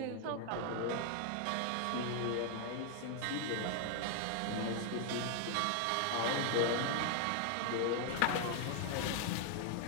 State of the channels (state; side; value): different; both; correlation 0.00